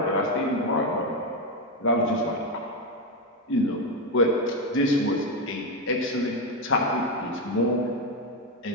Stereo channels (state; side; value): normal; both; correlation 0.10